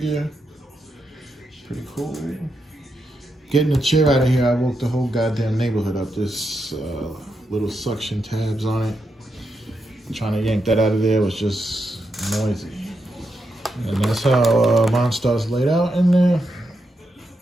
Pretty cool. Getting the chair out of here, I woke the whole goddamn neighborhood up. This little suction tabs on it. Trying to yank that out of there was just noisy. And that's how MonStar's laid out in there.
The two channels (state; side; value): normal; both; correlation 0.84